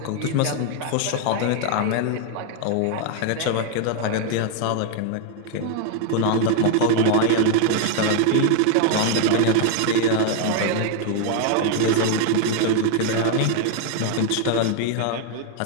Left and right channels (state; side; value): different; both; correlation 0.00